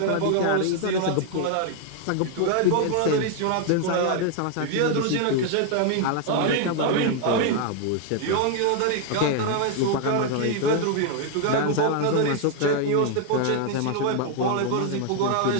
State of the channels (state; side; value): different; both; correlation 0.00